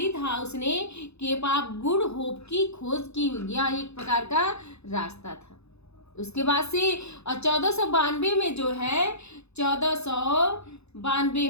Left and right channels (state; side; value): late; right; 0.80 ms